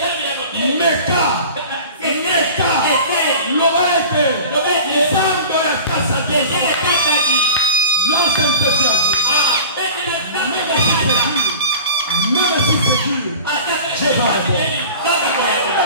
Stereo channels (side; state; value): both; inverted; correlation -0.38